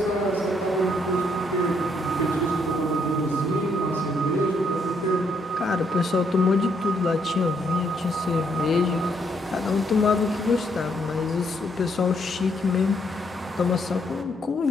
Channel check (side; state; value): both; normal; correlation 0.72